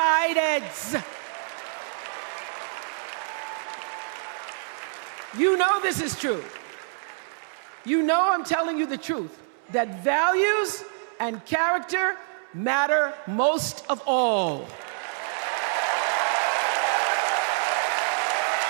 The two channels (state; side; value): silent; left; 61 dB below the other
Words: You know this is true. You know I'm telling you the truth, that values and character matter most of all.